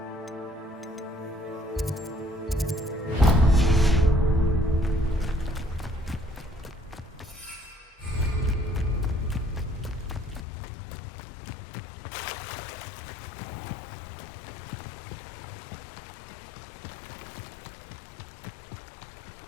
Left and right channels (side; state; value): right; drops out; at 10.5 s